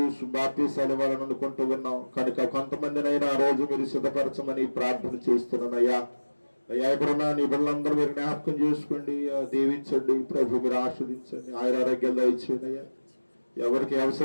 బాప్తీసాలు ఇవ్వాలని అనుకుంటూ ఉన్నాం. కనుక కొంతమందినైనా ఆ రోజు మీరు సిద్ధపరచమని ప్రార్థన చేస్తున్నాను అయ్యా. అయ్యా ఇప్పుడున్న నీ బిడ్డలందరూ మీరు జ్ఞాపకం చేసుకోండి, దీవించండి ప్రభు, మీరు ఆస్వాదించండి, ఆయురారోగ్యాలు దయచేయండి అయ్యా. ఎవరికి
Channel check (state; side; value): inverted; both; correlation -1.00